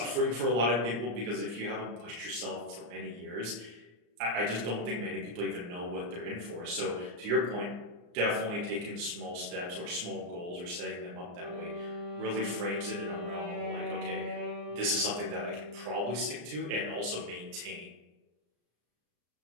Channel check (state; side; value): late; left; 34 ms